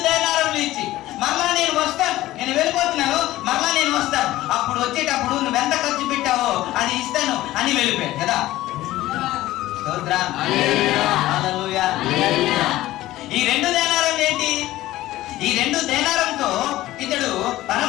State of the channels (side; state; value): right; quieter; 16.0 dB